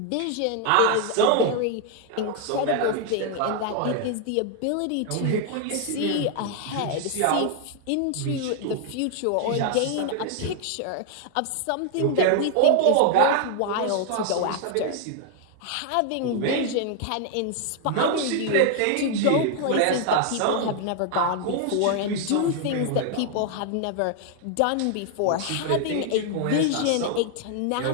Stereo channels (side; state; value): both; different; correlation 0.00